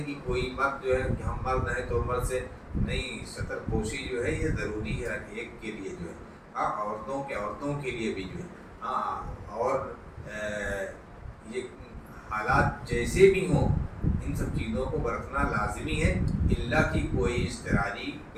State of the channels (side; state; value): both; identical; correlation 1.00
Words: کہ کوئی مرد جو ہے کہ ہم مرد ہیں تو مرد سے نہیں، سطر پوشی جو ہے یہ ضروری ہے ہر ایک کے لیے جو ہے، عورتوں کے لیے بھی جو ہے۔ اور یہ حالات جیسے بھی ہوں ان سب چیزوں کو برتنا لازمی ہے، الا کہ کوئی اضطراری